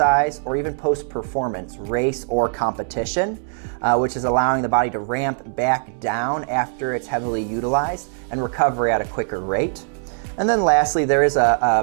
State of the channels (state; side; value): silent; left; digital silence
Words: or even post-performance, race or competition, which is allowing the body to ramp back down after it's heavily utilized and recover at a quicker rate. And then lastly, there is